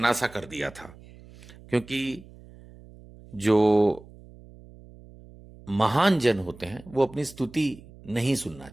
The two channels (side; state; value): right; noise; hum, 21 dB below the sound